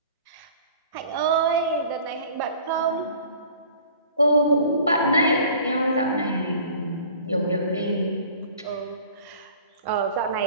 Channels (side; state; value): both; inverted; correlation -0.48